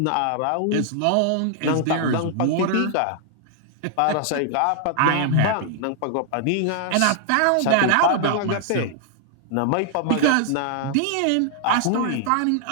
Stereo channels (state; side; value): different; both; correlation 0.00